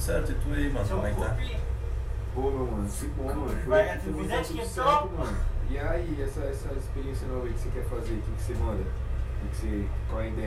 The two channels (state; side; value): identical; both; correlation 1.00